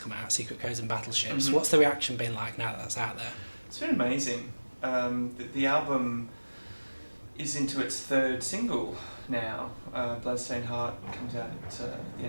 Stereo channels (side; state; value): both; inverted; correlation -1.00